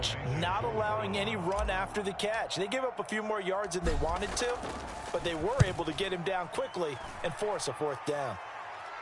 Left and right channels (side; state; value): both; identical; correlation 1.00